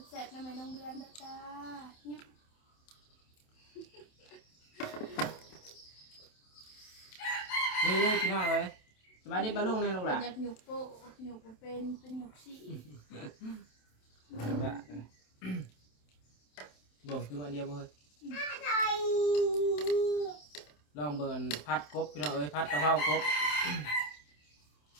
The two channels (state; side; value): late; right; 27 ms